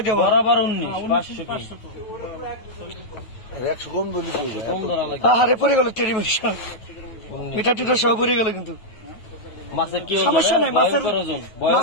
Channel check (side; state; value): right; late; 9.3 ms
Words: দেবো। বরাবর 19 আরে পড়ে গেল টেরি মিঠা টিটা সব পড়ে গেল। কিন্তু মাছের কি সমস্যা নাই, মাছের